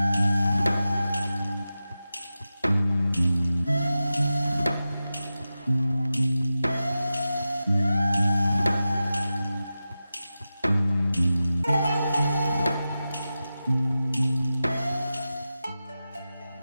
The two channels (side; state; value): both; inverted; correlation -0.93